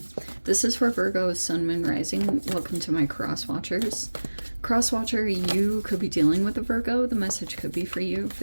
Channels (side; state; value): both; inverted; correlation -1.00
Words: This is for Virgo, Sun, Moon, Rising. Welcome to my cross watchers. Cross watcher, you could be dealing with a Virgo. The message could be for you.